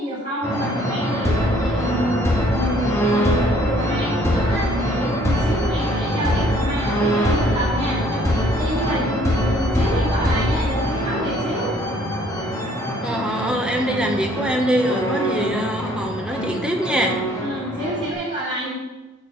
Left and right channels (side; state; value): both; normal; correlation 0.61